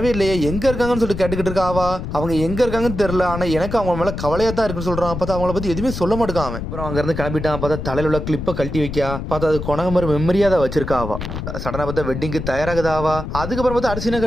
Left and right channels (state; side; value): noise; left; rumble, 6 dB below the sound